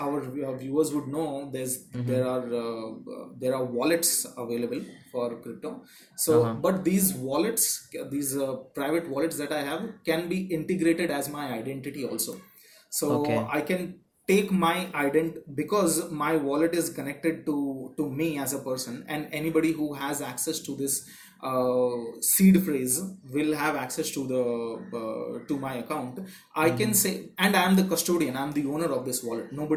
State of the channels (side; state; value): both; identical; correlation 1.00